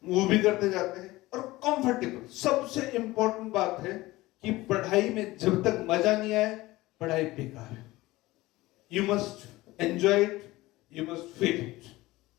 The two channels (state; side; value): quieter; right; 18.9 dB